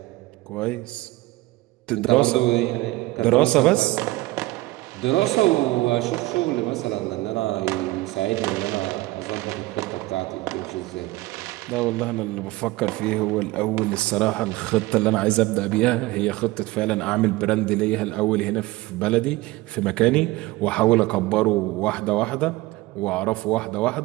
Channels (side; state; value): left; quieter; 19.7 dB